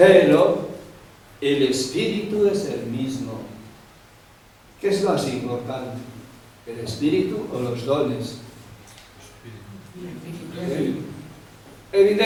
el espíritu es el mismo. ¿Qué es más importante? ¿El espíritu o los dones?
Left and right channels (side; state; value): both; identical; correlation 1.00